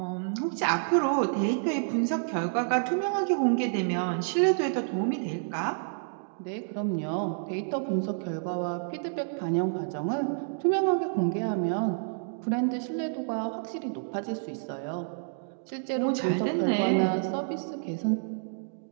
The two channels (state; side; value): silent; left; digital silence